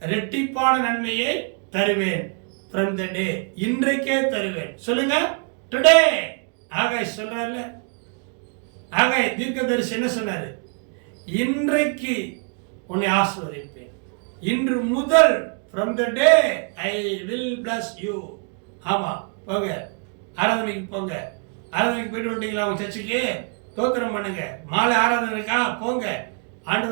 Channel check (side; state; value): left; quieter; 39.4 dB